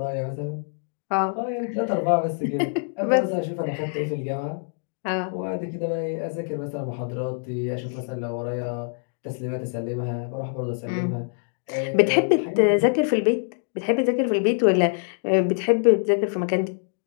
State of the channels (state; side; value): silent; right; digital silence